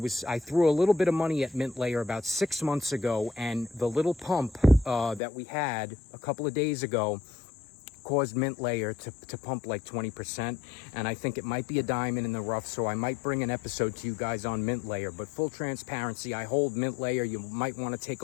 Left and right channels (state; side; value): drops out; right; at 5.2 s